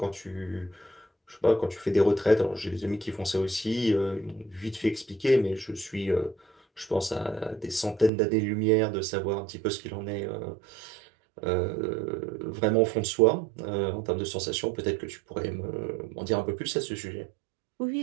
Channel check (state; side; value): drops out; left; at 8.1 s